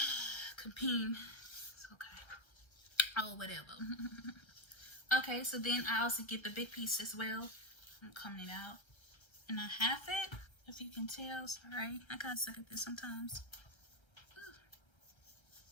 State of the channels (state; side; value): late; right; 1.3 ms